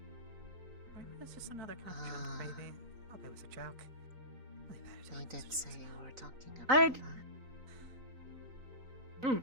It's just another kind of joke, baby. Hope it was a joke. They did say you were talking about that.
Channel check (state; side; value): late; left; 3.9 ms